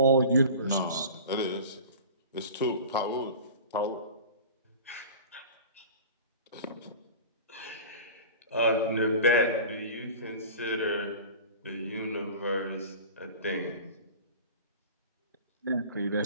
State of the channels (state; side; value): inverted; both; correlation -0.37